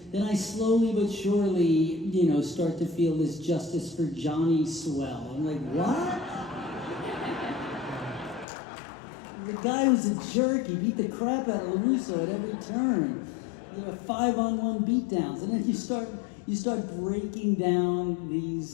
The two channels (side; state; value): right; drops out; at 8.5 s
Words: then I slowly but surely, start to feel this justice for Johnny swell. I'm like, what? The guy was a jerk. He beat the crap out of LaRusso at every turn. There were 5-on-1 beatdowns, and then you start breaking down the